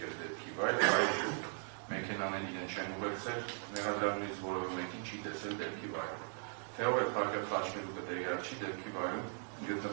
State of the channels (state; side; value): silent; left; 52 dB below the other